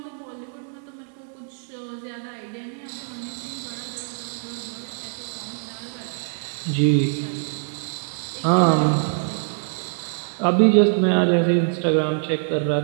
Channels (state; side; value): silent; left; 63 dB below the other